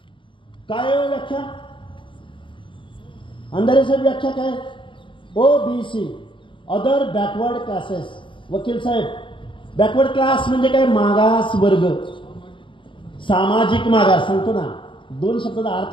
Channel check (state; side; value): late; right; 0.24 ms